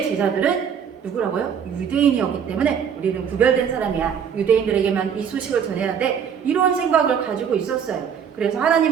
제자들은 누구라고요? 유대인이었기 때문에 우리는 구별된 사람이야. 유대인들에게만 이 소식을 전해야 돼. 이런 생각을 가지고 있었어요. 그래서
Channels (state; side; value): quieter; left; 7.6 dB